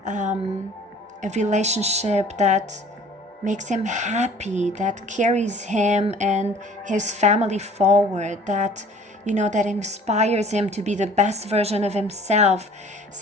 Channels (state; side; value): normal; both; correlation 0.50